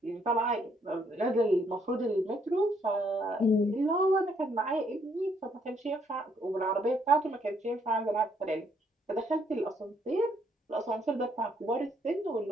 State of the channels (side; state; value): both; normal; correlation 0.70